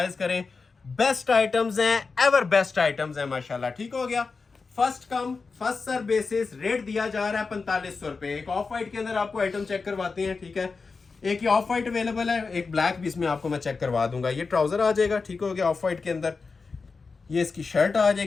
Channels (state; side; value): quieter; right; 4.5 dB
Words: करें। बेस्ट आइटम्स हैं, एवर बेस्ट आइटम्स हैं माशाल्लाह, ठीक हो गया। First come first serve basis rate दिया जा रहा है 4500 रुपए। एक ऑफ वाइट के अंदर आपको आइटम चेक करवाते हैं, ठीक है। एक ये ऑफ वाइट अवेलेबल है, एक ब्लैक भी इसमें आपको मैं चेक करवा दूंगा। ये ट्राउजर आ जाएगा, ठीक हो गया, ऑफ वाइट के अंदर। ये इसकी शर्ट आ